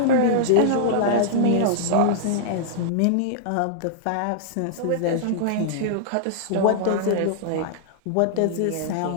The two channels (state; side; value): different; both; correlation -0.02